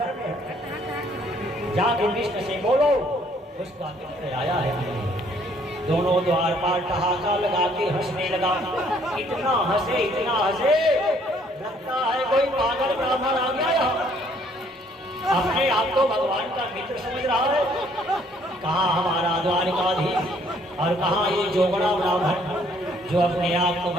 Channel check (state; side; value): normal; both; correlation 0.63